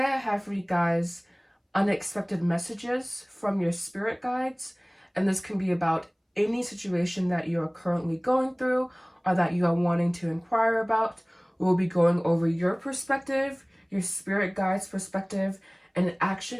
I have for you guys unexpected messages from your spirit guides, and this can be about any situation that you are currently going through or that you are wanting to inquire about. We'll be going over your perspective, your spirit guides' perspective, and an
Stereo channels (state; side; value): identical; both; correlation 1.00